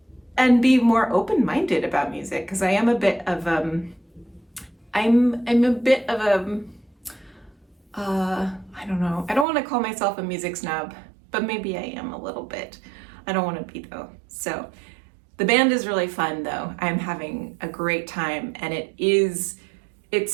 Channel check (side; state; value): left; drops out; at 9.5 s